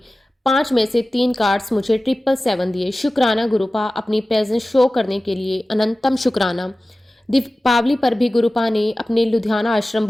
5 में से 3 कार्ड्स मुझे 777 दिए। शुक्राना गुरुपा, अपनी प्रेजेंस शो करने के लिए अनंतम शुक्राना। दीपावली पर भी गुरुपा ने अपने लुधियाना आश्रम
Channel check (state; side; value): normal; both; correlation 0.96